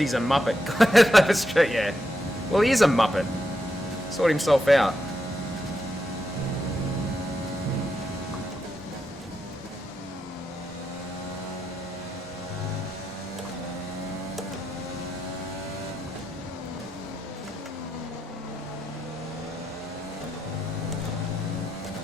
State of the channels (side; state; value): both; normal; correlation 0.84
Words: a muppet. That's true, yeah. Well, he is a muppet. Sort himself out.